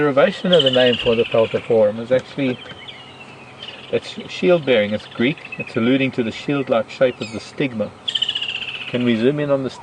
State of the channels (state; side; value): identical; both; correlation 1.00